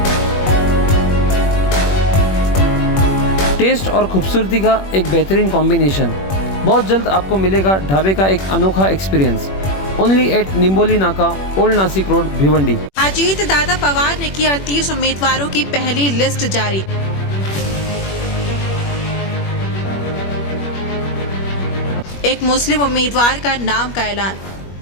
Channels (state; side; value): late; right; 21 ms